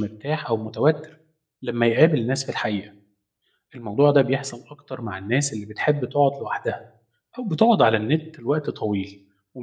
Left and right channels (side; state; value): both; identical; correlation 1.00